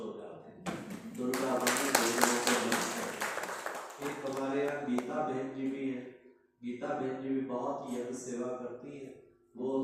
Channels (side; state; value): both; identical; correlation 1.00